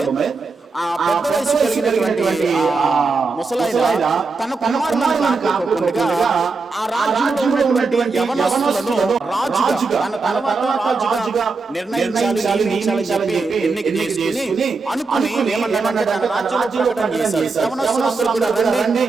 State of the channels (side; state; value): left; quieter; 4.2 dB